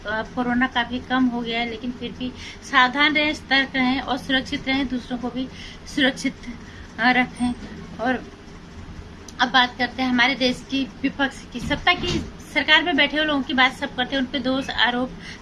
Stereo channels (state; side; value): identical; both; correlation 1.00